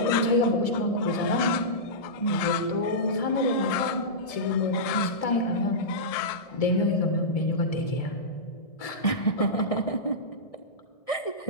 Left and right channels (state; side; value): late; right; 1.7 ms